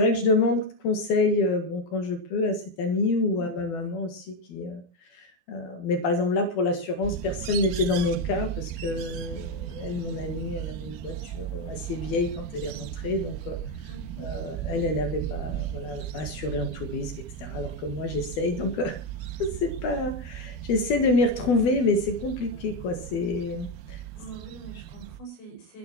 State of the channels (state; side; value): late; right; 12 ms